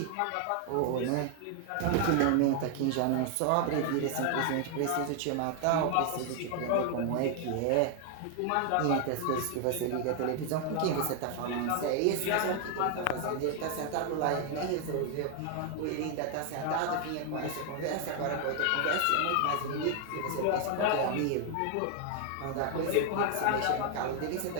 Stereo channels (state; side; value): different; both; correlation 0.00